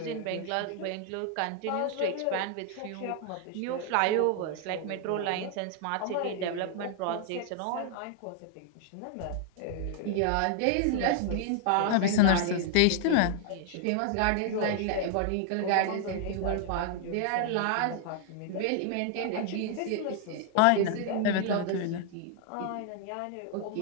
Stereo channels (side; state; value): both; different; correlation 0.00